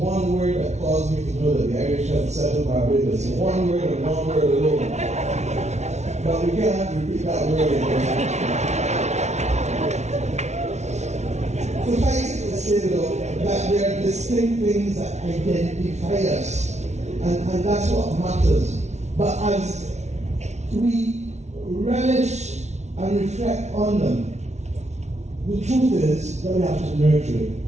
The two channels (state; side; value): late; left; 0.32 ms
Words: word that caused me to know that the Irish had settled Barbados. One word and one word alone. But we can't repeat that word again. Suffice it to say, though, that there are distinct things that identify us, and that's what matters. But as we relish and reflect on them, the truth is that we have to nurture it,